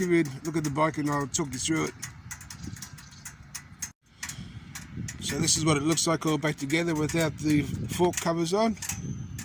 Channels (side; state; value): both; identical; correlation 1.00